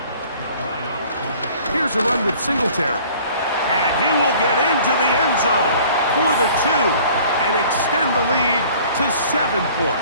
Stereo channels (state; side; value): inverted; both; correlation -0.51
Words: Here's a run with Singletary. And he will get into the end zone for the 2. and extend the lead to 7